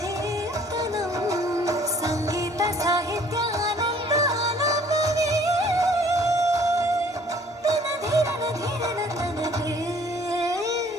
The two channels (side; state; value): both; normal; correlation 0.56